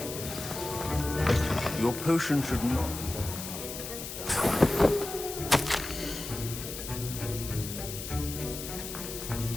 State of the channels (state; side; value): noise; left; hiss, 8 dB below the sound